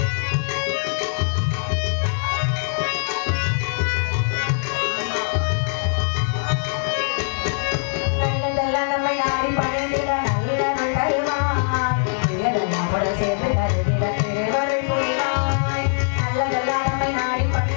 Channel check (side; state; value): right; silent; digital silence